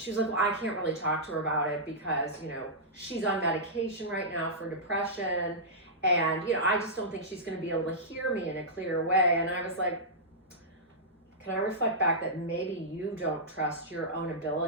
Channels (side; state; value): both; normal; correlation -0.13